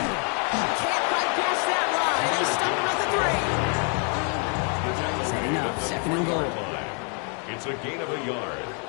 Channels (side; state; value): right; quieter; 39.1 dB